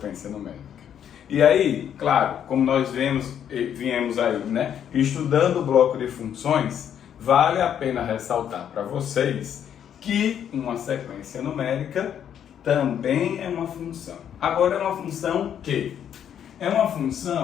numérica. E aí, claro, como nós viemos aí, né, estudando o bloco de funções, vale a pena ressaltar para vocês que uma sequência numérica também é uma função. Agora, é uma função que? É uma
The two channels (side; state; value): right; quieter; 9.2 dB